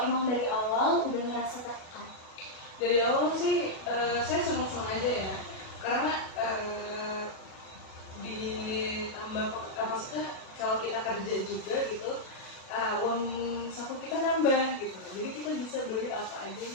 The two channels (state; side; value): late; right; 37 ms